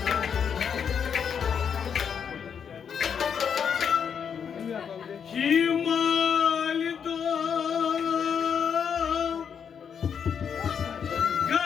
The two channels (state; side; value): quieter; right; 7.3 dB